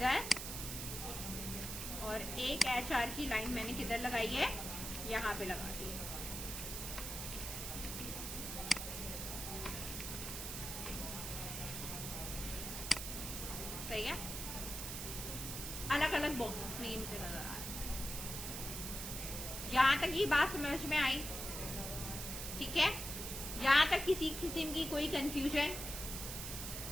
और एक HR की लाइन मैंने किधर लगाई है, यहां पे लगा दी है। सही है, अलग अलग बॉक्सेस में ये मुझे नजर आ रहा है। यहां तक ये बात समझ में आई? ठीक है, यहां तक किसी किस्म की कोई कंफ्यूजन?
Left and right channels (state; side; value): noise; right; hiss, 5 dB below the sound